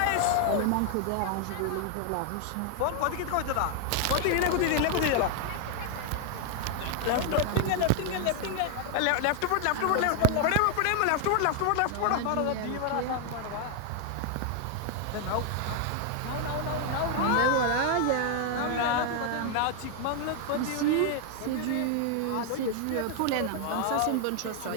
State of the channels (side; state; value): both; different; correlation 0.00